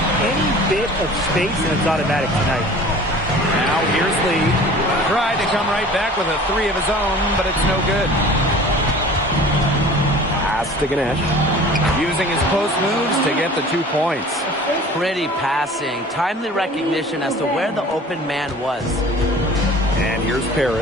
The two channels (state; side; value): normal; both; correlation 0.44